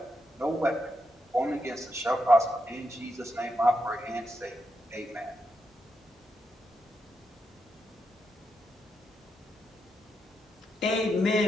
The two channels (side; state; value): both; normal; correlation 0.84